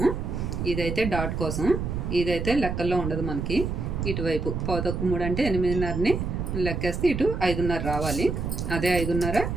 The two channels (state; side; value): noise; right; rumble, 3 dB below the sound